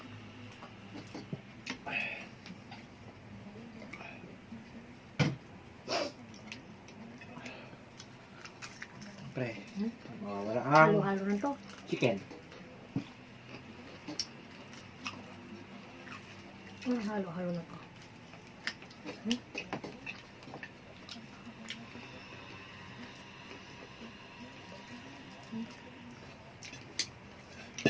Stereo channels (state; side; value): identical; both; correlation 1.00